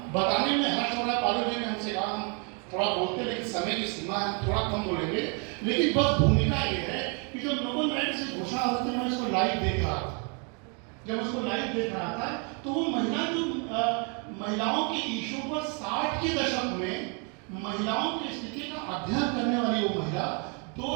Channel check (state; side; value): quieter; left; 36.2 dB